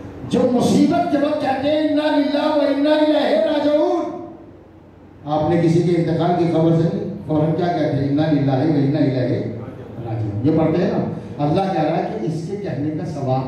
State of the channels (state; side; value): identical; both; correlation 1.00